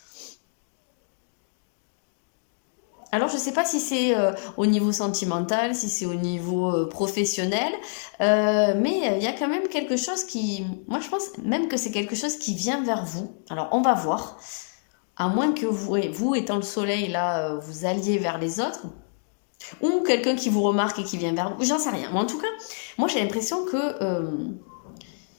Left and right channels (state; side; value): silent; right; digital silence